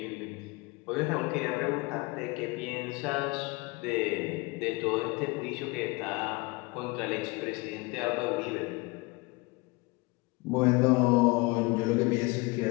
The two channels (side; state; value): right; quieter; 25.3 dB